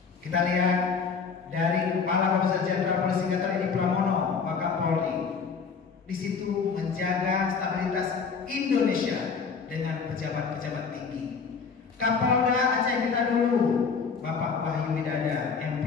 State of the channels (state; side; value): quieter; right; 5.6 dB